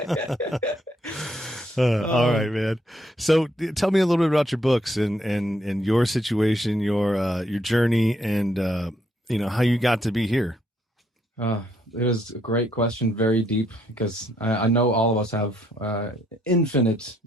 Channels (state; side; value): normal; both; correlation 0.72